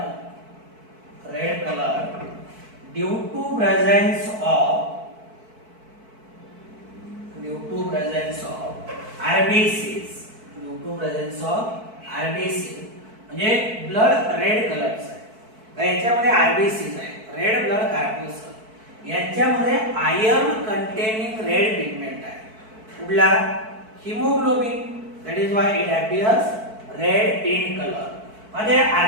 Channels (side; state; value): left; late; 4.6 ms